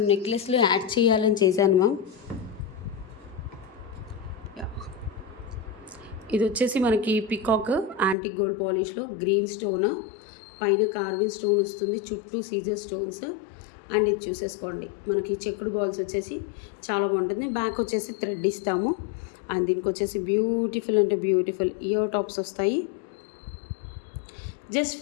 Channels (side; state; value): right; drops out; at 8.2 s